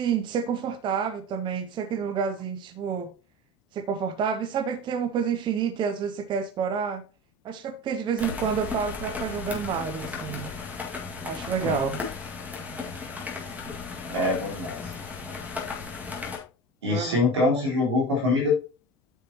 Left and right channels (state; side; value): normal; both; correlation 0.31